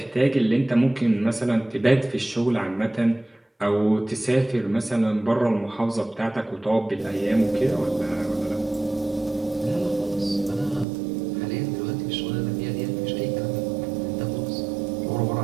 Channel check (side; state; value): left; drops out; at 10.9 s